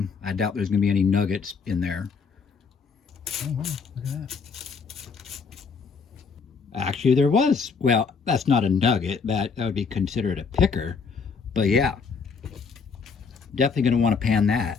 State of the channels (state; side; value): quieter; right; 5.3 dB